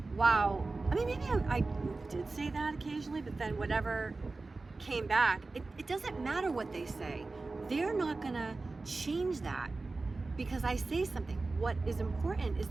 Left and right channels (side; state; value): left; quieter; 3.6 dB